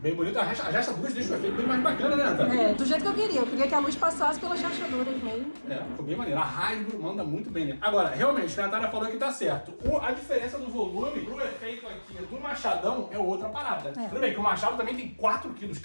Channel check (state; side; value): inverted; both; correlation -1.00